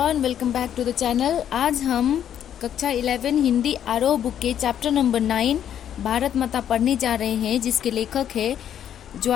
welcome back to the channel. आज हम कक्षा 11 हिंदी आरोह बुक के चैप्टर नंबर 9 भारत माता पढ़ने जा रहे हैं, जिसके लेखक है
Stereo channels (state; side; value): quieter; right; 9.8 dB